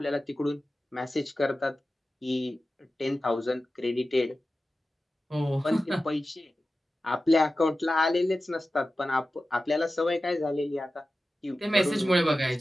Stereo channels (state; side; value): normal; both; correlation 0.94